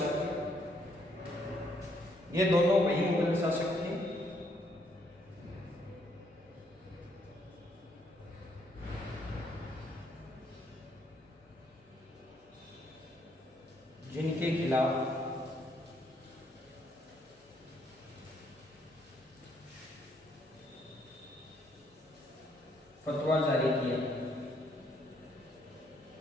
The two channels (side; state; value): both; normal; correlation 0.70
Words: ये दोनों वही मुगल शासक थे जिनके खिलाफ फतवा जारी किया।